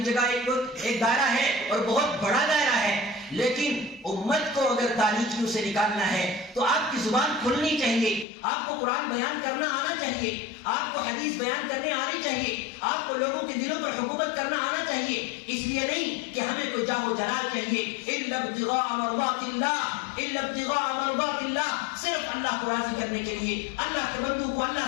جگہ ایک دائرہ ہے اور بہت بڑا دائرہ ہے، لیکن امت کو اگر تاریکیوں سے نکالنا ہے تو آپ کی زبان کھلنی چاہیے، آپ کو قرآن بیان کرنا آنا چاہیے، آپ کو حدیث بیان کرنے آنی چاہیے، آپ کو لوگوں کے دلوں پر حکومت کرنا آنا چاہیے. اس لیے نہیں کہ ہمیں کوئی جاہ و جلال چاہیے، الا ابتغاء مرضات اللہ، الا ابتغاء مرضات اللہ، صرف اللہ کو راضی کرنے کے لیے، اللہ کے بندوں کو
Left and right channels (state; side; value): drops out; right; at 8.2 s